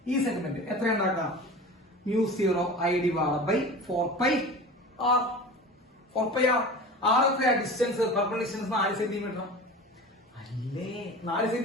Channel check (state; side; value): normal; both; correlation 0.35